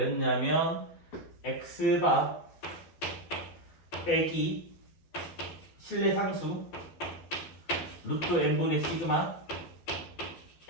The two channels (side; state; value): right; late; 12 ms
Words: x바 빼기 신뢰 상수 루트 n분의 시그마